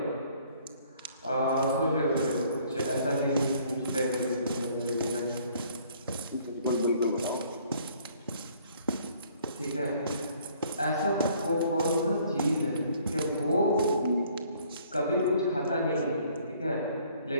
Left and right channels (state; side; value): inverted; both; correlation -0.60